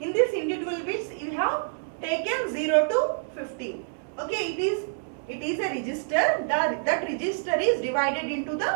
In this individual bits you have taken 0 to 15. Okay, it is a register. That register is divided into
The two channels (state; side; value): silent; left; 60 dB below the other